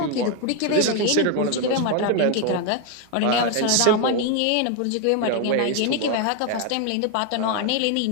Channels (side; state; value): both; different; correlation 0.01